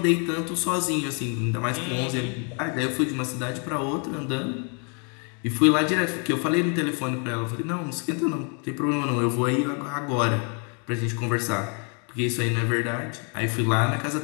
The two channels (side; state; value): right; quieter; 38.4 dB